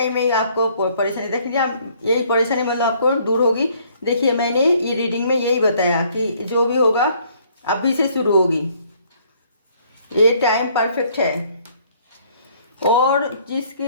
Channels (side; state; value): both; inverted; correlation -0.63